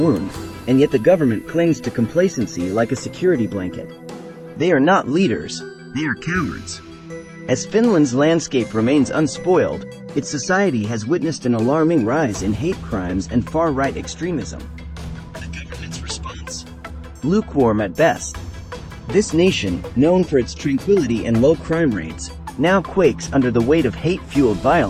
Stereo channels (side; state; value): both; identical; correlation 1.00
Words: and yet the government clings to complacency like a security blanket. They are not leaders, they are cowards. As Finland's landscape remains unspoiled, its society has witnessed an alarming rise in hate crimes and far-right extremism. The government's response? Lukewarm at best. This nation, known for its tranquility and low crime rates, now quakes under the weight of hate-fueled